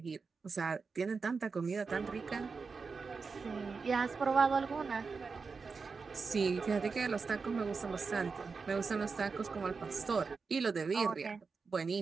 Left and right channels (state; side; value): quieter; left; 4.8 dB